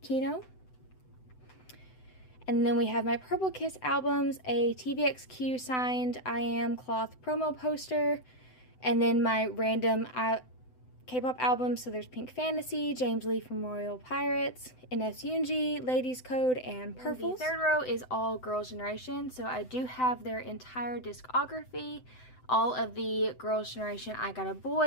Kino. And then we have my Purple Kiss albums, a TVXQ signed I Am cloth promo poster, and then my random K-pop albums. So there's Pink Fantasy, James Lee from Royal Pirates, NS Yoongi, Ladies Code, and Purples. The third row is all Girls' Generation, so I do have their entire discography. All of the Girls' Generation I Got a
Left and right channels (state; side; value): late; right; 7.9 ms